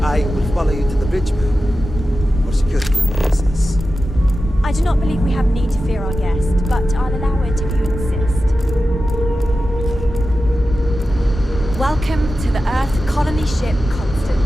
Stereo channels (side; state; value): both; normal; correlation 0.93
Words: I will follow you to the bridge, ma'am. For security purposes. I do not believe we have need to fear our guest, but I'll allow it if you insist. Welcome to the Earth colony ship